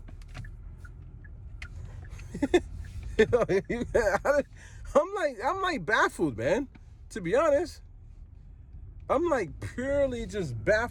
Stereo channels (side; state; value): both; identical; correlation 1.00